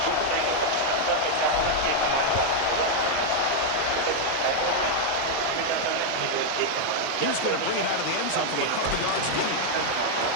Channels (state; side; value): different; both; correlation 0.00